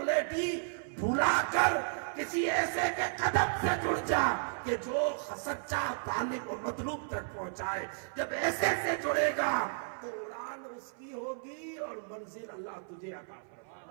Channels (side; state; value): left; silent; 55 dB below the other